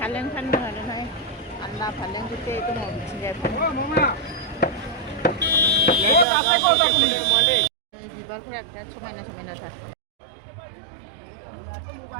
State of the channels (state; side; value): drops out; left; at 6.2 s